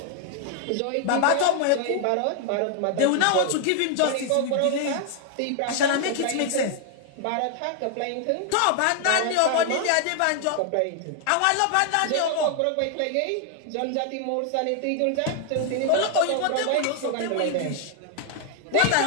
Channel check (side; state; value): both; different; correlation 0.00